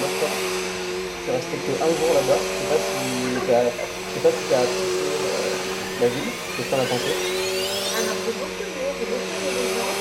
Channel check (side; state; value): both; identical; correlation 1.00